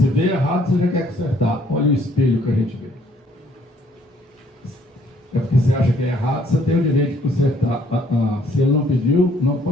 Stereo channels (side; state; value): both; normal; correlation 0.64